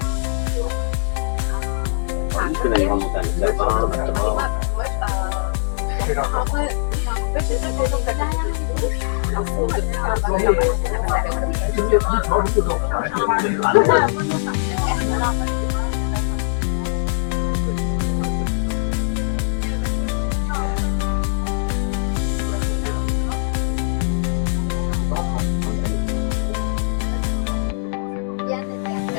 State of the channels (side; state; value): right; silent; digital silence